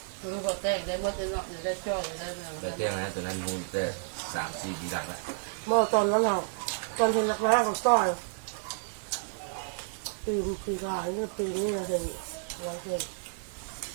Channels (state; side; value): silent; left; 57 dB below the other